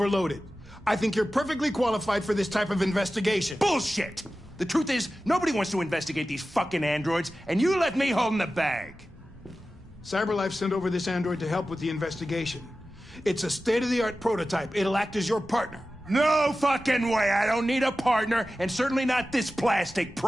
I think you're perfectly qualified for this type of investigation. Bullshit! The truth is, nobody wants to investigate these fucking androids, and you let me hold the bag. CyberLife sent over this android to help with the investigation. It's a state-of-the-art prototype. It'll act as your partner. No fucking way! I don't need a partner, and certainly not this plastic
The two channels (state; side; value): normal; both; correlation 0.94